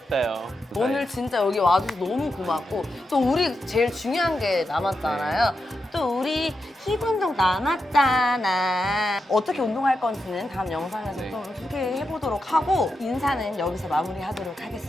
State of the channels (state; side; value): normal; both; correlation 0.87